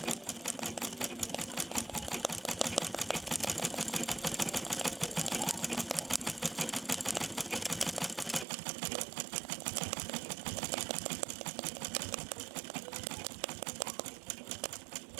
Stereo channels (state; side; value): drops out; left; at 8.5 s